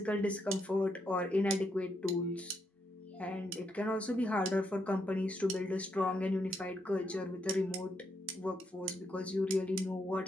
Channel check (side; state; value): both; normal; correlation 0.79